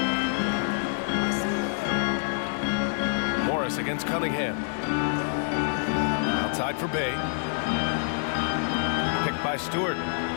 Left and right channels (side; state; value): right; silent; 60 dB below the other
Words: Morris against Cunningham. Outside for Bay. Picked by Stewart.